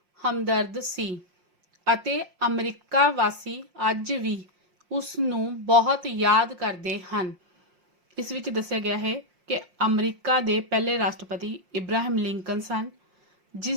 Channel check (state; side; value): late; left; 5.6 ms